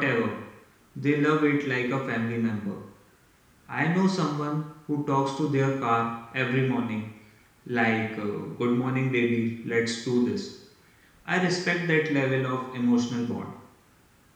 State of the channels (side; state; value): both; identical; correlation 1.00